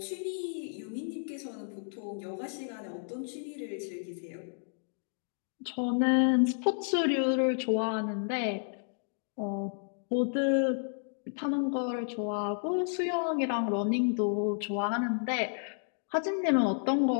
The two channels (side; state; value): right; silent; digital silence